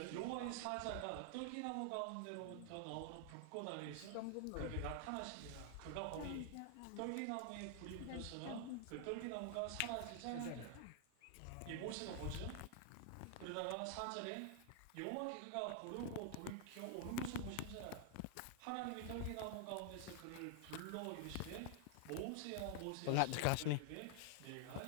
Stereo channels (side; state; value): both; different; correlation 0.00